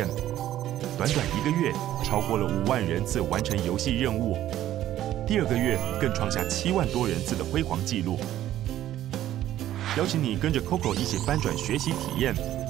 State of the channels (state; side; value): quieter; left; 12.9 dB